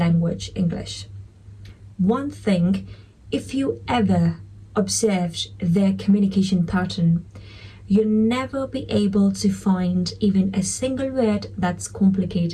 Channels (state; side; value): identical; both; correlation 1.00